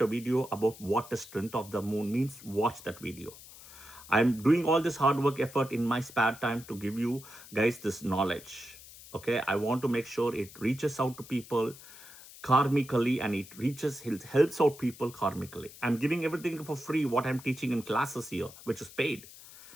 a video about what the strength of the moon means. Watch that video. I'm doing all this hard work effort in my spare time to give you guys this knowledge. Okay, I want to make sure it reaches out to people karmically, and it helps out people karmically. I'm giving everything for free, what I'm teaching in classes here, which is paid,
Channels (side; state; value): left; noise; hiss, 18 dB below the sound